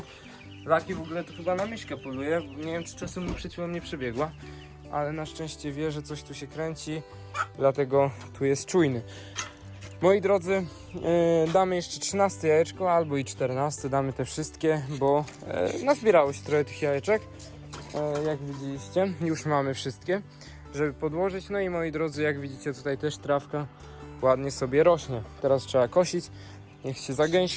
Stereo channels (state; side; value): identical; both; correlation 1.00